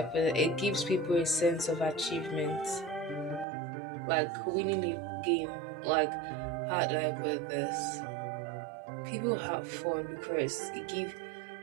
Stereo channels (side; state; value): left; drops out; at 3.5 s